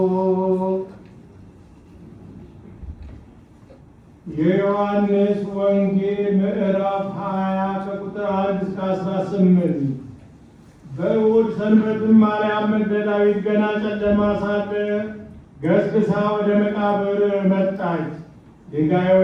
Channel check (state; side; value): identical; both; correlation 1.00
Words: የዮሐንስ ወንጌል ምዕራፍ 20 ከቁጥር 1 እስከ 18። በእሑድ ሰንበትም ማርያም መግደላዊት ገና ጨለማ ሳለ ገስግሳ ወደ መቃብር መጣች።